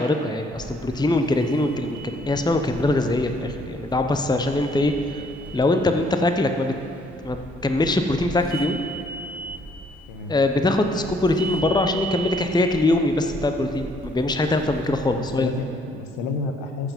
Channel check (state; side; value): normal; both; correlation 0.65